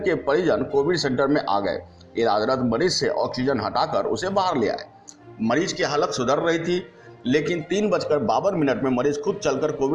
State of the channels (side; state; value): both; identical; correlation 1.00